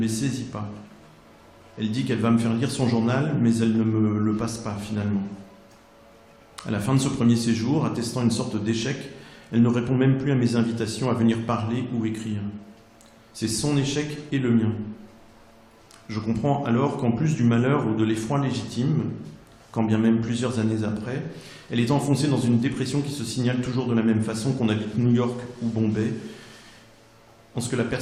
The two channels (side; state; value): both; identical; correlation 1.00